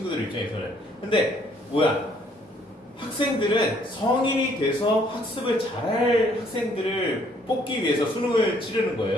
입장에서는. 근데 뭐야? 학생들은 성인이 돼서 학습을 잘할 학생들을 뽑기 위해서 수능을 치르는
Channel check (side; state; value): both; normal; correlation 0.64